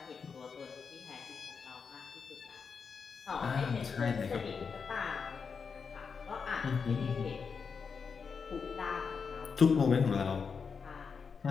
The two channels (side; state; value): right; quieter; 5.7 dB